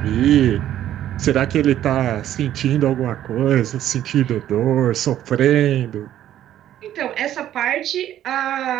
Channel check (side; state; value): left; quieter; 11.9 dB